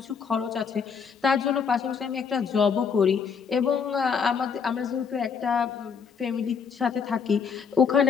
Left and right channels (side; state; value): right; quieter; 6.3 dB